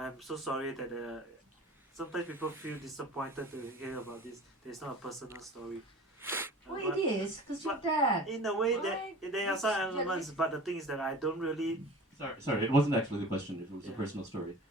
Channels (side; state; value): both; normal; correlation 0.40